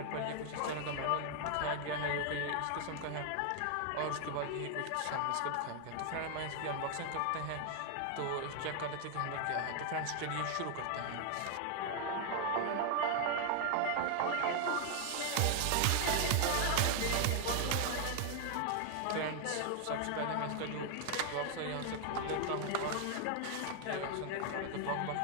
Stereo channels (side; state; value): both; different; correlation 0.00